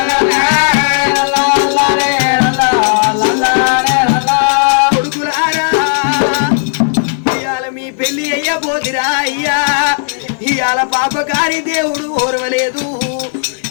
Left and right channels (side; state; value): right; silent; digital silence